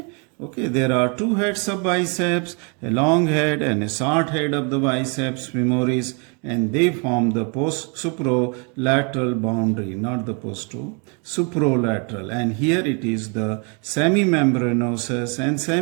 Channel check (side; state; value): left; quieter; 35.4 dB